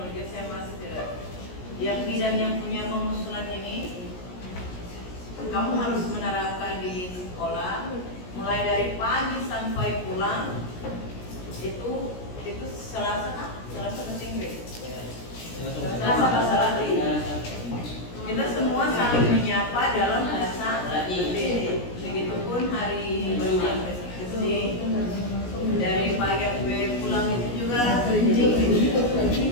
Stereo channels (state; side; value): late; right; 17 ms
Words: saya masih tidak. Yang bidang yang punya pengusulan ini, kamu harus menerapkan di sekolah, mulai dari pagi sampai pulang. Itu Selasa penting deh. Selasa bahasa Latin. Kita semua saling menyapa dalam bahasa Latin. Begitupun hari berbulan SD. Dari pagi sampai pulang itu juga penting.